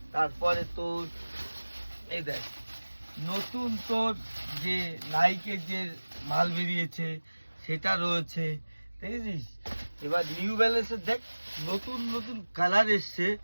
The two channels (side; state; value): both; inverted; correlation -1.00